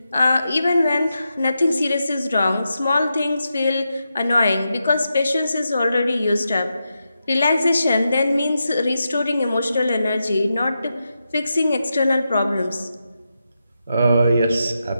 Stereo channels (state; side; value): inverted; both; correlation -0.87